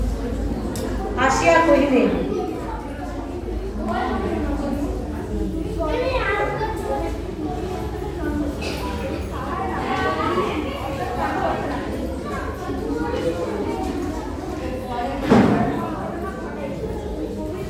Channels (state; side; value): identical; both; correlation 1.00